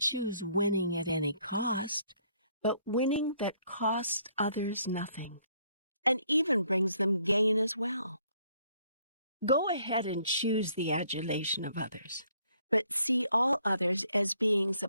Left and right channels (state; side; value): inverted; both; correlation -0.67